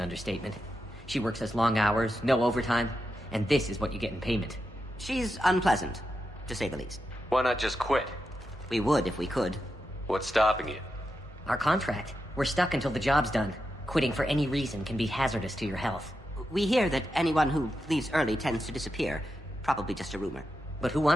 understatement. She works as long hours, no overtime, and this is what you get in payment. She's unpleasant, to say the least. Why not just quit? We would if we could. What's stopping you? Our contract. We're stuck until the job's done. Quitting for any reason can be hazardous to your health. We hear that anyone who leaves early tends to disappear. Probably just a rumor. But who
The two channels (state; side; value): normal; both; correlation 0.88